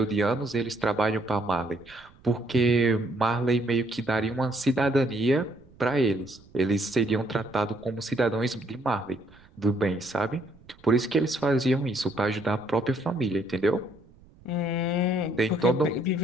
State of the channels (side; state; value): right; noise; rumble, 26 dB below the sound